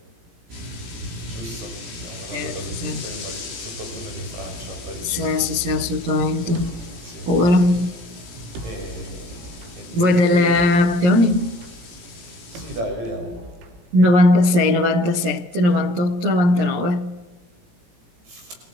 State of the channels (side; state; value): left; late; 17 ms